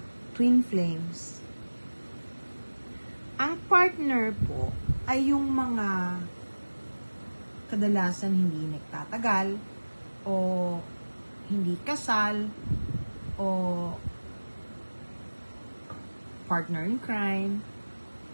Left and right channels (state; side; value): inverted; both; correlation -1.00